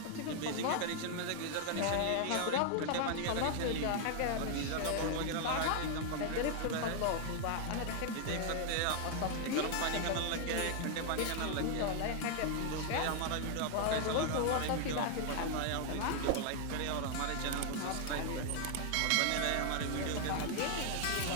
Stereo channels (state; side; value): different; both; correlation 0.00